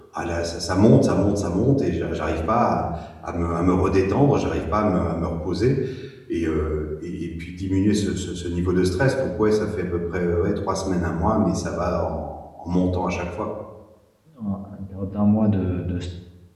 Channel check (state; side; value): identical; both; correlation 1.00